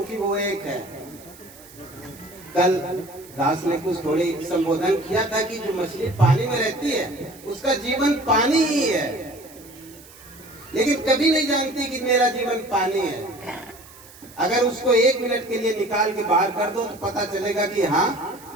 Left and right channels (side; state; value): right; noise; hiss, 22 dB below the sound